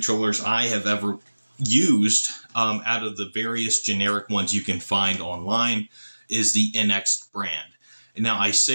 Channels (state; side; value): inverted; both; correlation -1.00